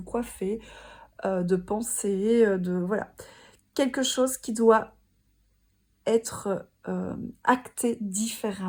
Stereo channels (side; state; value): both; identical; correlation 1.00